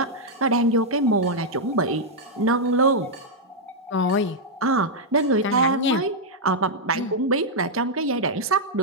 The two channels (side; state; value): both; normal; correlation -0.04